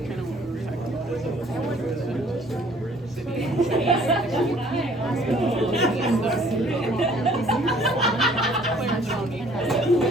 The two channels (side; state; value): both; normal; correlation 0.57